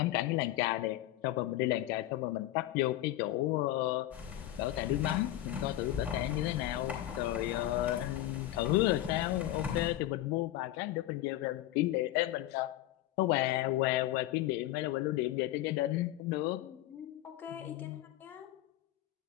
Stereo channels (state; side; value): quieter; right; 14.5 dB